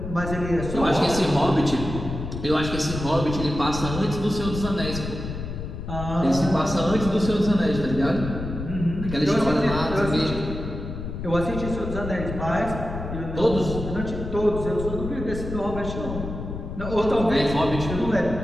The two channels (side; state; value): left; noise; rumble, 7 dB below the sound